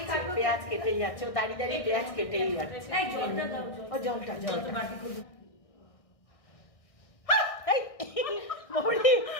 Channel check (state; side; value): late; right; 1.6 ms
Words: পেঁয়াজ কেটেই যাচ্ছে, ও দাঁড়িয়ে দাঁড়িয়ে পেঁয়াজ কেটেই যাচ্ছে। ও জলটা